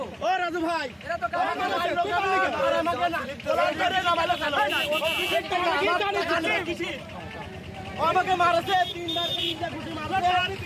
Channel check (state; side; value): identical; both; correlation 1.00